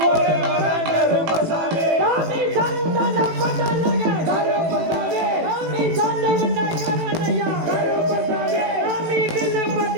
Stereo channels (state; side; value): late; left; 18 ms